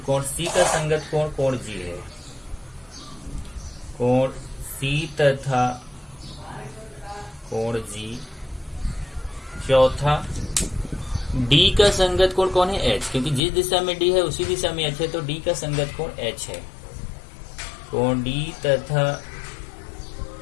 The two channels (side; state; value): right; drops out; at 13.4 s